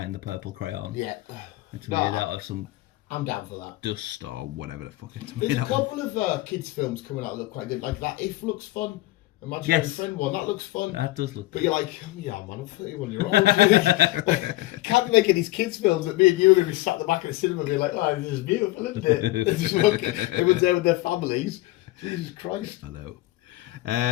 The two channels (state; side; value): quieter; right; 18.4 dB